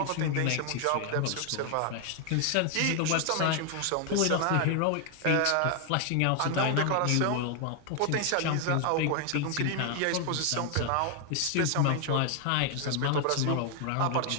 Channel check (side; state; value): both; different; correlation 0.00